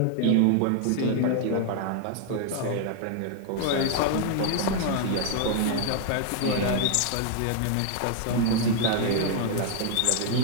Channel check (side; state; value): both; different; correlation 0.00